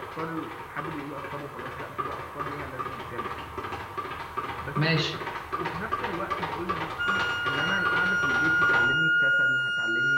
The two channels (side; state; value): both; identical; correlation 1.00